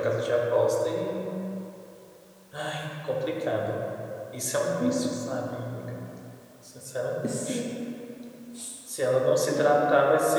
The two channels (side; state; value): both; identical; correlation 1.00